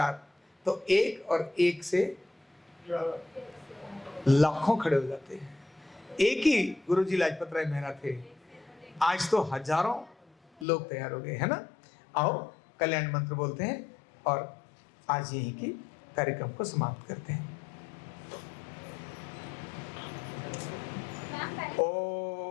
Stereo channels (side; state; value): right; drops out; at 10.7 s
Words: तो एक और एक से लाखों खड़े हो जाते हैं। एक ही गुरुजी लाजपत राय मेहरा थे, आज तो हजारों लोग तैयार हो गए, है ना। आओ कल्याण मंत्र बोलते हैं और आज यहीं की कार्यक्रम को समाप्त करते हैं।